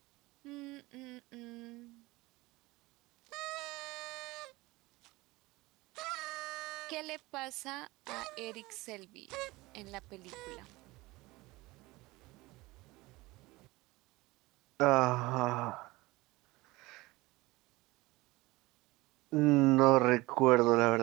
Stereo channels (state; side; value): quieter; left; 21.1 dB